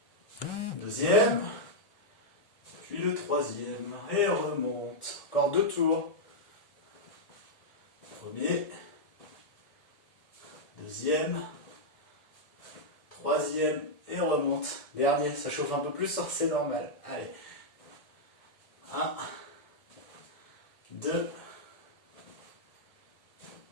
Deuxième. Puis le troisième. Et remonte. Encore 2 tours. Premier. Deuxième. Troisième. Et on remonte. Dernier. Ça chauffe un peu plus, c'est normal. Allez. 1. 2.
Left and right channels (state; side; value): late; right; 1.7 ms